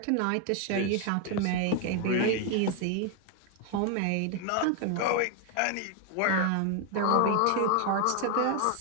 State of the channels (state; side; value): different; both; correlation 0.01